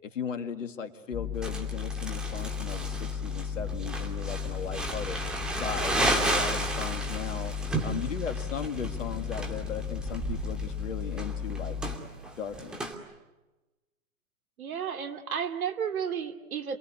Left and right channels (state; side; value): normal; both; correlation 0.34